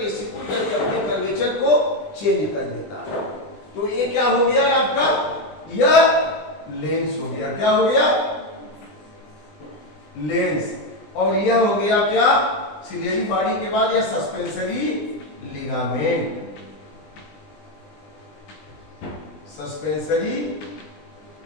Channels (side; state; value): right; late; 20 ms